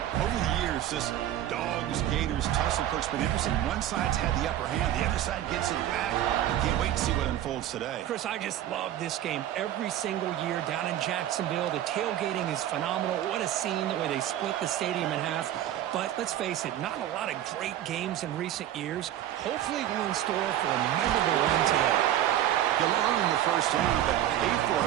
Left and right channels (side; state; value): left; quieter; 12.2 dB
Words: Over the years, this Dogs-Gators tussle perk's been interesting. One side's had the upper hand. The other side gets it back. Can't wait to see what unfolds today. Chris, I just love this game every single year down in Jacksonville. The tailgating is phenomenal. What a scene, the way they split the stadium in half. But let's face it, not a lot of great games in recent years. Hopefully we're in store for a memorable run today. You'll earn the first down, but pay for